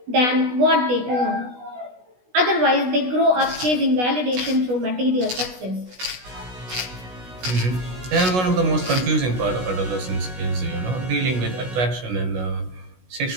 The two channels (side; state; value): left; late; 16 ms